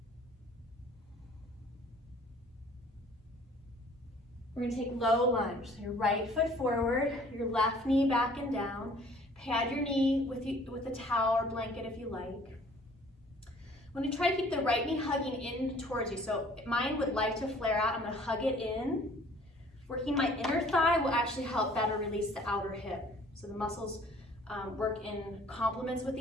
We're gonna take low lunge. So your right foot forward, your left knee back and down. Pad your knee with a towel or blanket if you like. I'm gonna try to keep the right knee hugging in towards you. So mine would like to flare out. I'm gonna hug it in. Working my inner thigh will actually help better release the outer hip. So the muscles work in complements with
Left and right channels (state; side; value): normal; both; correlation 0.54